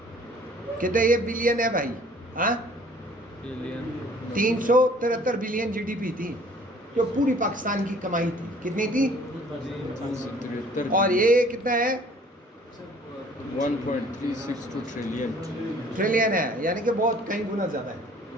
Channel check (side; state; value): both; normal; correlation 0.54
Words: कितने ये बिलियन है भाई? हाँ 373 बिलियन जीडीपी थी जो पूरी पाकिस्तान की कमाई थी। कितनी थी? और ये कितना है? 1.362 ट्रिलियन है, यानी कि बहुत कई गुना ज़्यादा है।